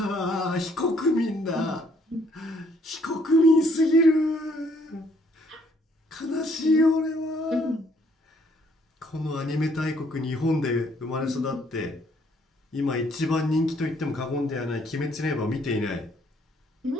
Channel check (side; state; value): both; normal; correlation 0.66